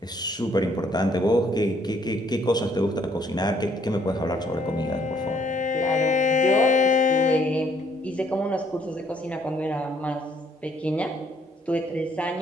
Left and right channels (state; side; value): normal; both; correlation 0.66